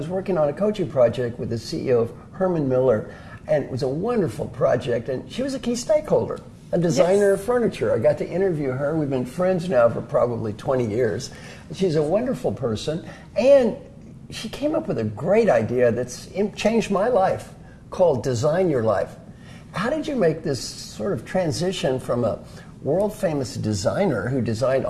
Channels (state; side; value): identical; both; correlation 1.00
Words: working on a coaching project with the CEO of Herman Miller, and it was a wonderful project, and she was a key stakeholder, a designer of furniture. I got to interview her. We've been friends now for probably 20 years. She's a wonderful person, and she came up with a great idea that's changed my life, called Design Your Life. How did you make this sort of transition from a world-famous designer who designed